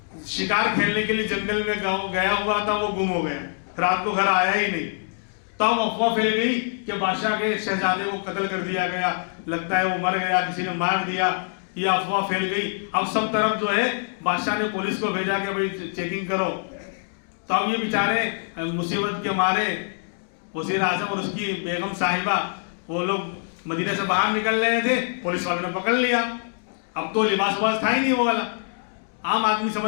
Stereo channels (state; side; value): silent; right; digital silence